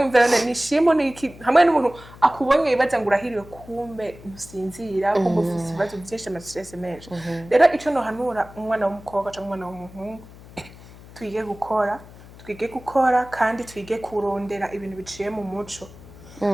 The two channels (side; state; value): left; noise; hum, 19 dB below the sound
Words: imverane nishimo niki hamwe n'umuntu akubonye ibaza ngo urahiriwe kumbe musinzira kumbe ufise ibibazo byinshi ama stress menshi rero ico no hanura umwana w'umukobwa cyangwa umwana w'umuhungu twige gukora kandi twige kurondera ibintu biciye mu muco